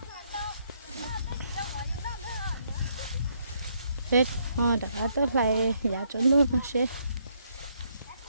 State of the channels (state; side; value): inverted; both; correlation -0.73